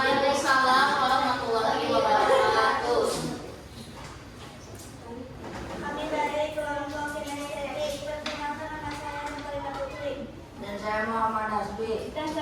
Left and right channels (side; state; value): both; identical; correlation 1.00